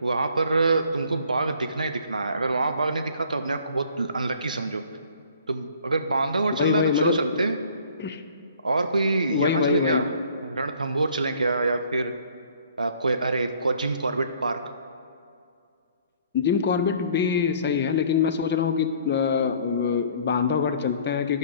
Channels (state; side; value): inverted; both; correlation -0.55